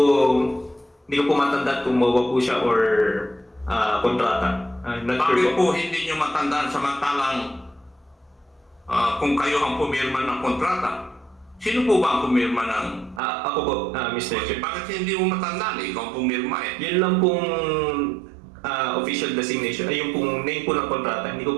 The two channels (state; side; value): drops out; left; at 13.2 s